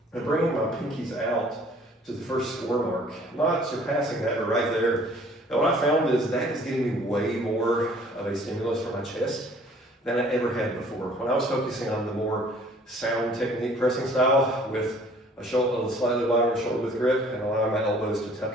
I'm bringing my pinkies out to the first score mark, not surpassing that, but right there. And what I found is that is getting me way more of a stimulus for my chest than I ever had before. When I was focusing on the more sound technique pressing style with a slightly wider shoulder width grip and allowing my elbows to tuck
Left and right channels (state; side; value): normal; both; correlation 0.55